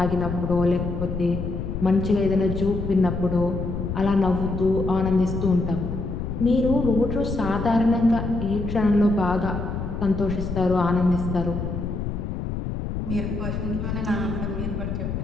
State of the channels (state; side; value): noise; left; rumble, 4 dB below the sound